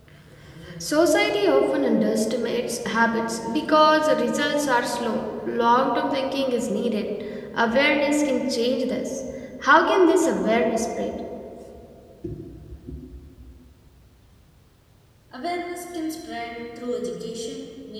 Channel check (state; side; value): identical; both; correlation 1.00